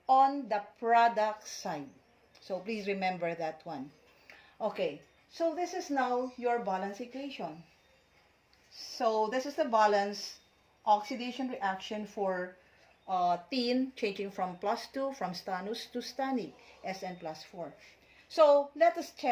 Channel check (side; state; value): both; identical; correlation 1.00